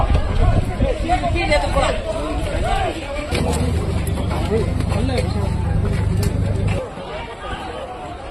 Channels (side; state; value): both; identical; correlation 1.00